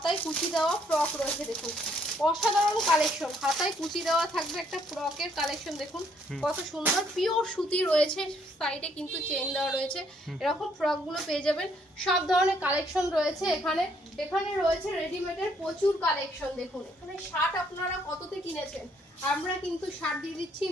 কুচি দেওয়া ফ্রক রয়েছে। দেখুন অসাধারণ কালেকশন, হাতায় কুচি দেওয়া থাকবে একটা ফ্রকের কালেকশন। দেখুন কত সুন্দর পিওর সুতি রয়েছে, সাইডে কিন্তু চেন দেওয়া রয়েছে। এরকম ফ্রক গুলো পেয়ে যাবেন। সব ধরনের কালেকশন রয়েছে এখানে। এখানে রয়েছে রেডিমেডের প্রচুর কালেকশন। দেখুন এখানে শার্ট আপনারা কততে কিনেছেন? আমরা কিন্তু শার্ট দিয়ে দিচ্ছি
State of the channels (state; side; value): normal; both; correlation 0.68